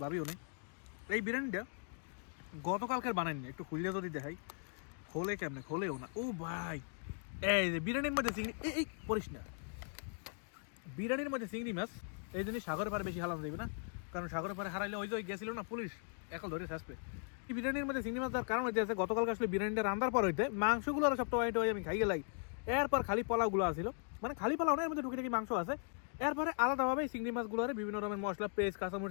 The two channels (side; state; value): right; silent; 52 dB below the other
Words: ভাবিও নেই। এই বিরিয়ানিটা গতকালকের বানাইনি, একটু খুললে যদি দেখাই, খোলে কেমনে, খোলেও না। ও ভাই, এই যে বিরিয়ানির মধ্যে চিংড়ি, এই পড়িস না, বিরিয়ানির মধ্যে চিংড়ি মাছ, এই জন্য সাগরে পারে বেশি হালানো যাবে না, কারণ সাগরে পারে হারাইলে ওই যে গেছিল না পুলিশ, এখন ধরে আসবে। এই বিরিয়ানির মধ্যে চিংড়ি মাছ দেওয়ার কারণ হইতে আছে, গতকালকে আসলে বিরিয়ানিটা রান্নার পর হইতে মাংসগুলো আর সবটা ওয়াইট আমি খাই গেলাই, এরপর খালি পোলাওগুলো আসছিল, মানে খালি পোলাও না, এর মধ্যে টুকিটাকি মাংস আছে, এরপরে আলাদাভাবে চিংড়ি মাছগুলো বিভিন্ন রকমের মশলা, পেস্ট,